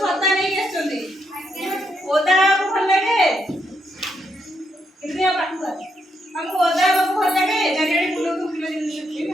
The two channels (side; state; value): both; normal; correlation 0.78